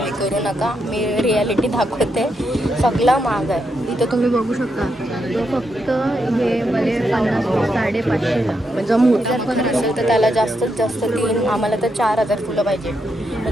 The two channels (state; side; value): normal; both; correlation 0.82